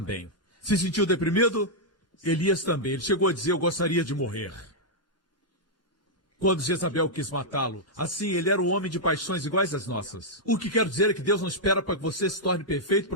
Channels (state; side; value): normal; both; correlation -0.06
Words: Se sentiu deprimido? Elias também. Ele chegou a dizer: eu gostaria de morrer. Quando Jezabel quis matá-lo, assim, ele era um homem de paixões iguais às nossas. O que quero dizer é que Deus não espera para que você se torne perfeito